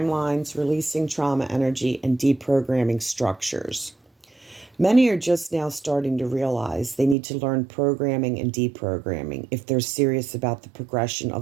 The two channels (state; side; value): drops out; left; at 7.2 s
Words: releasing trauma energy, and deprogramming structures. Many are just now starting to realize they need to learn programming and deprogramming if they're serious about the progression